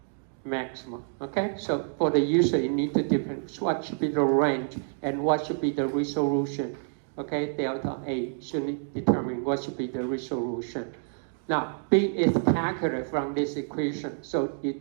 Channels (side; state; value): left; silent; digital silence